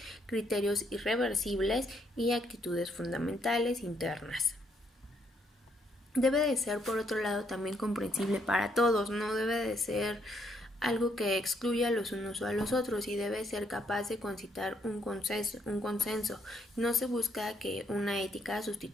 criterios irreversibles y actitudes fundamentales internas. Debe de ser, por otro lado, también comprensible para todos, no debe de ser algo que excluya a los unos o a los otros y debe ser capaz de concitar un consenso. No se busca que una ética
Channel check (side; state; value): both; normal; correlation 0.72